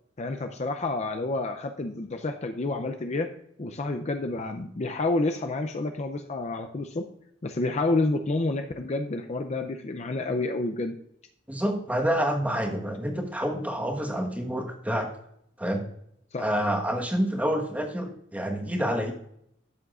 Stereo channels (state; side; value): normal; both; correlation 0.64